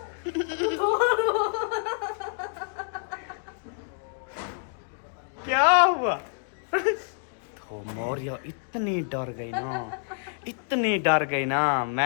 क्या हुआ? तो मौर्य इतनी डर गई ना, इतनी डर गई ना,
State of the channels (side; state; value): right; silent; digital silence